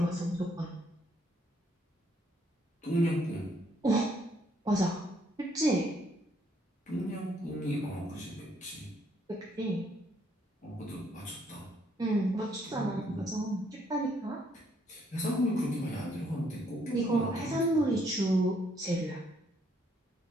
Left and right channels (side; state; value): both; normal; correlation 0.69